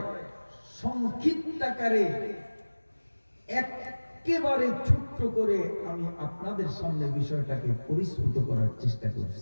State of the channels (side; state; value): both; inverted; correlation -1.00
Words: সংক্ষিপ্ত আকারে একেবারে ছোট্ট করে আমি আপনাদের সামনে বিষয়টাকে পরিস্ফুট করার চেষ্টা